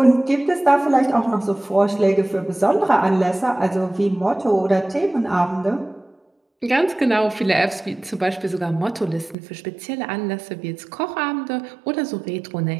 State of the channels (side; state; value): left; drops out; at 9.3 s